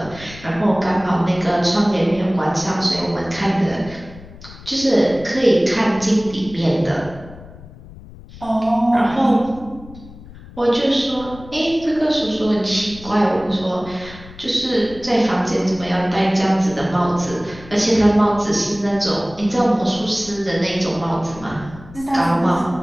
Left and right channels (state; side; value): noise; left; rumble, 18 dB below the sound